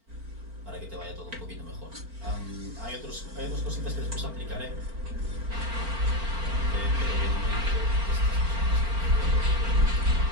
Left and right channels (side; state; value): left; late; 4.4 ms